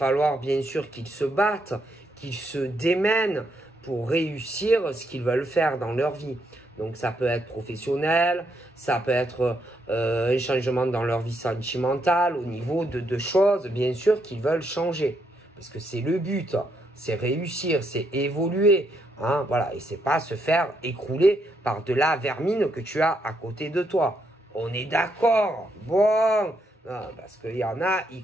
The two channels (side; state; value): both; normal; correlation 0.77